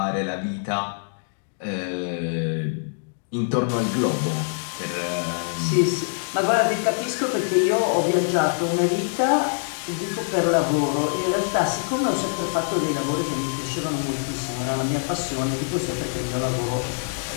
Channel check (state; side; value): silent; right; digital silence